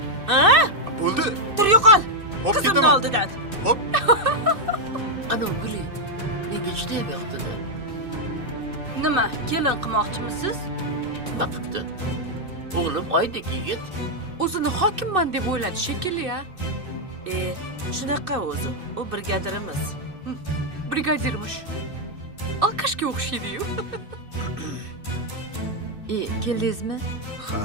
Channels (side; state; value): left; late; 2.6 ms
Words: Ha? Bo'ldi. Tur yo'qol. Hop Qizimni ketaman. oldidan. Hop. Ana Guli, menga juda yoqdi-da. Nima, kelin qilmoqchimisiz? Vaqtda. O'g'lim oydek yigit. O'zini hokimman deb o'yladi shekilli-ya. Shunaqa o'zi. U brigadirimiz. Brigadirmish. Alkashga o'xshaydi-yu. Keldingizmi? Ha.